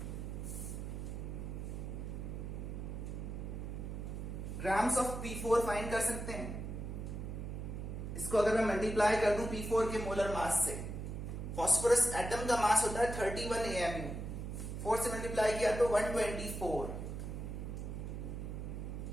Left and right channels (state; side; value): noise; right; hum, 5 dB below the sound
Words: ग्राम्स ऑफ P4 फाइंड कर सकते हैं। इसको अगर मैं मल्टीप्लाई कर दूं P4 के मोलर मास से, फास्फोरस एटम का मास होता है 31 AMU, 4 से मल्टीप्लाई किया तो